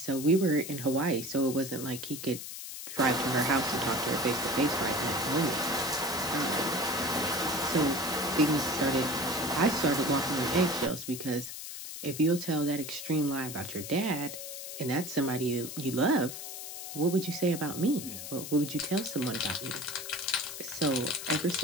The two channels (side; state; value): left; noise; hiss, 9 dB below the sound